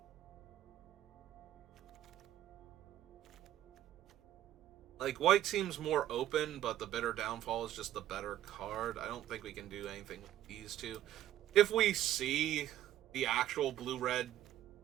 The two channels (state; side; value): quieter; left; 12.7 dB